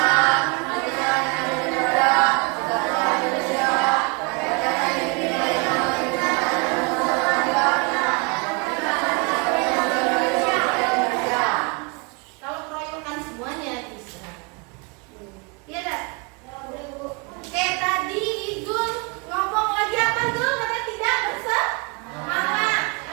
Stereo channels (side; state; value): left; quieter; 31.4 dB